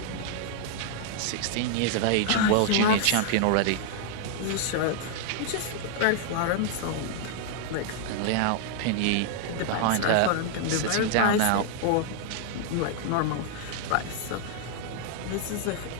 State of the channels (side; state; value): both; different; correlation 0.00